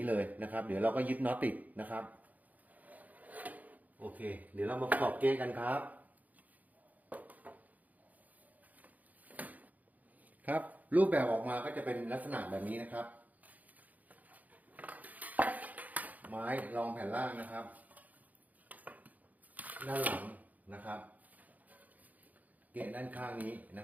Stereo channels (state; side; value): late; left; 0.078 ms